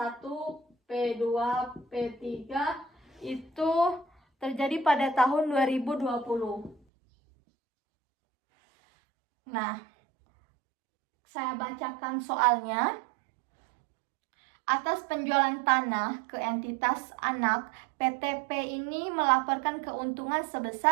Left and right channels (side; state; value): left; drops out; at 6.8 s